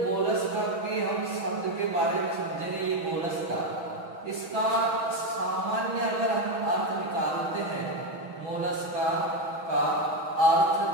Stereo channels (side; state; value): left; late; 6.2 ms